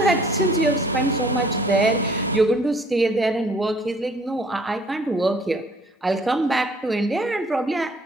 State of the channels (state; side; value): normal; both; correlation 0.57